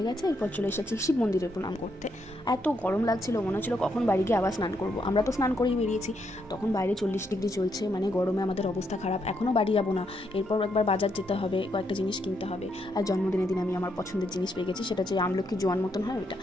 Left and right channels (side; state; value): both; normal; correlation 0.78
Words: গেছে, এরপর চলে এসেছি শিব মন্দিরে প্রণাম করতে। এত গরম লাগছিল, মনে হচ্ছিল কখন বাড়ি গিয়ে আবার স্নান করবো। আমরা তো স্নান করেই বেরিয়েছি, তখন বাইরে 40 ডিগ্রি চলছে, মানে গরমে আমাদের অবস্থা খারাপ। এখনও বাড়ি যাবো না, এরপর একবার বাজার যেতে হবে, কয়েকটা জিনিস কিনতে হবে। আর জন্মদিনের দিন আমি আমার পছন্দের জিনিস পেয়ে গেছি, সেটা হচ্ছে আমলকি জোয়ান মতন হয় ওইটা।